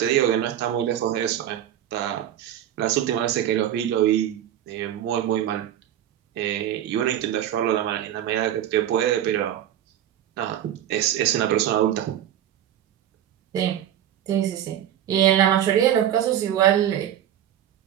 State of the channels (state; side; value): quieter; left; 11.1 dB